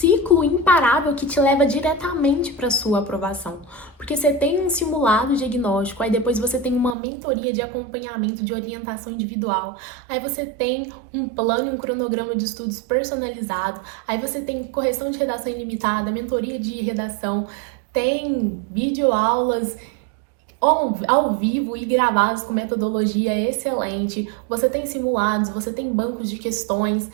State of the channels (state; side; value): drops out; left; at 7.0 s